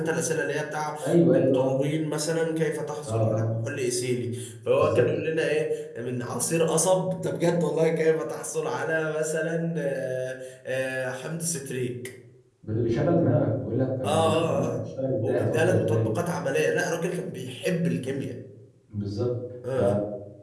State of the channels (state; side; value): identical; both; correlation 1.00